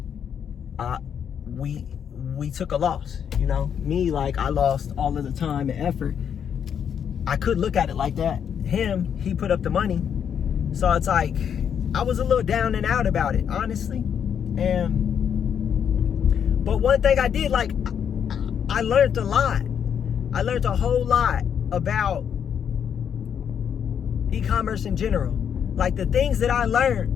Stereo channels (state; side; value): quieter; right; 8.1 dB